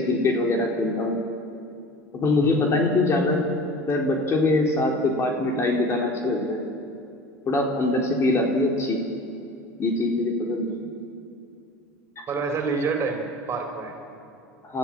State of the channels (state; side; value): normal; both; correlation 0.40